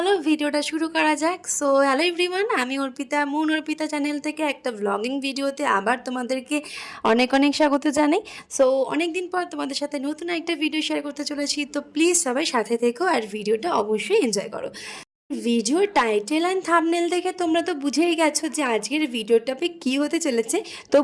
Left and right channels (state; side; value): identical; both; correlation 1.00